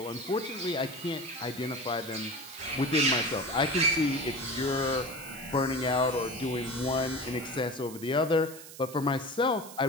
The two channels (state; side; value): noise; right; hiss, 15 dB below the sound